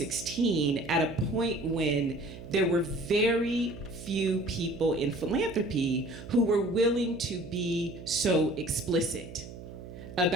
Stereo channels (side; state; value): right; noise; hum, 13 dB below the sound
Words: at a point when there were very few people in philanthropy who were willing to be so explicit